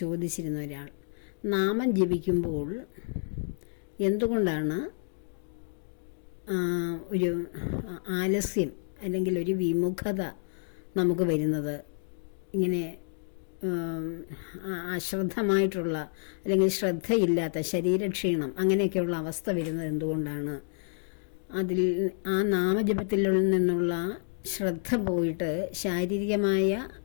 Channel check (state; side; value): silent; right; digital silence